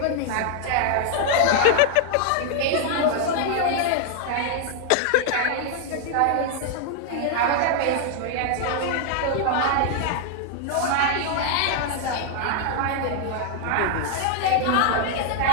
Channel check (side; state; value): both; different; correlation 0.00